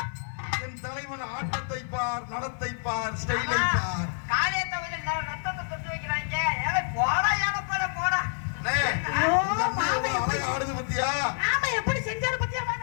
என் தலைவன் ஆட்டத்தை பார், நடத்தை பார், ஸ்டைலை பார். காரியத்தை வந்து ரத்தத்தை தொட்டு வைக்கிறாங்க. ஏழை போடா, ஏழை போல போடா. அண்ணே, ஐயோ, இந்த அண்ணன் மாமே எவ்வளவு எப்படி அழகா ஆடுது பாத்தியா? ஆமா எப்படி செஞ்சாரு பத்தியா?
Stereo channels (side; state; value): right; silent; digital silence